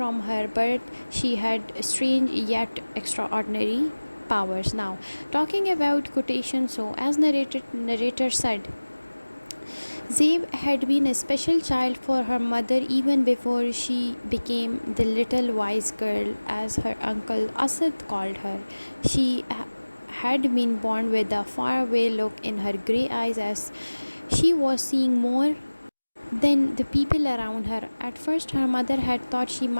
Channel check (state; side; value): inverted; both; correlation -1.00